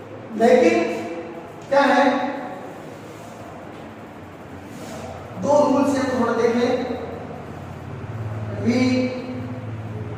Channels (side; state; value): both; identical; correlation 1.00